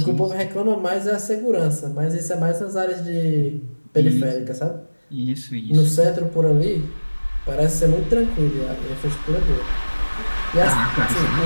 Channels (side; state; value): both; inverted; correlation -1.00